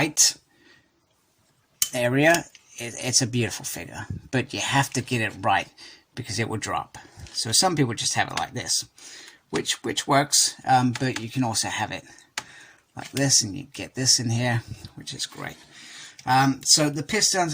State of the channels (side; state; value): both; identical; correlation 1.00